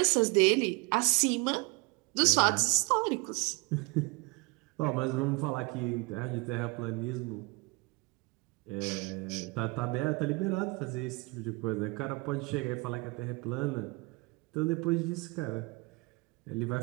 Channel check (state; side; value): quieter; left; 27.4 dB